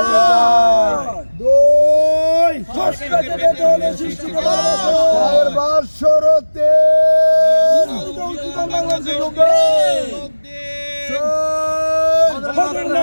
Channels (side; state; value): both; inverted; correlation -1.00